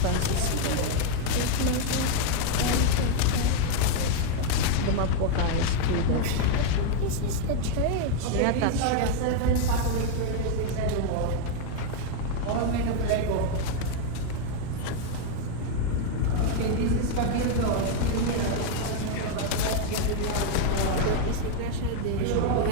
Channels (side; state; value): both; different; correlation 0.00